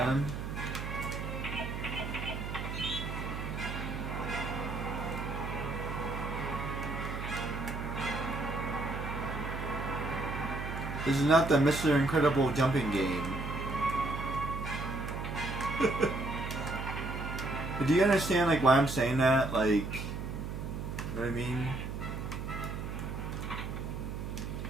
This is not the Mr. Incredible jumping game. But do you understand like why I'm saying that? Like, you know what I mean?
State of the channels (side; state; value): right; noise; hum, 5 dB below the sound